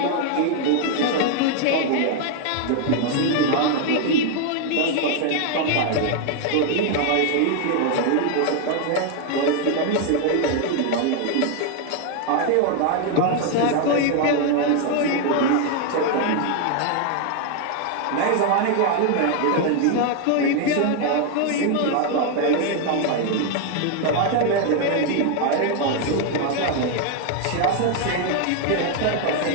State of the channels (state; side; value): different; both; correlation 0.00